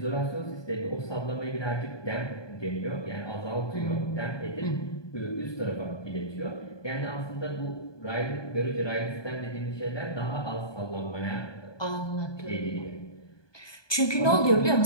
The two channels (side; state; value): right; late; 1.2 ms